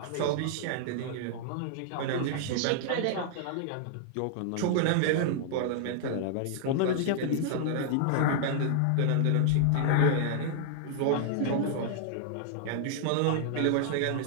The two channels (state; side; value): different; both; correlation -0.01